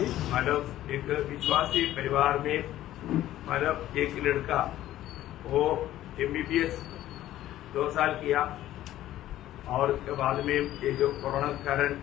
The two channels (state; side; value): quieter; right; 13.7 dB